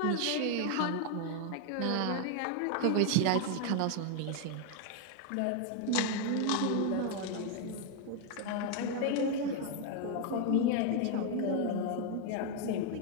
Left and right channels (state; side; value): different; both; correlation 0.00